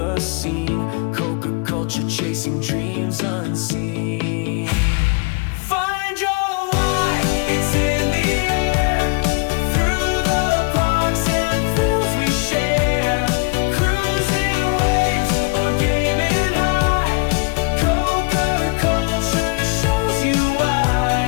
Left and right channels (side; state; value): right; quieter; 30.5 dB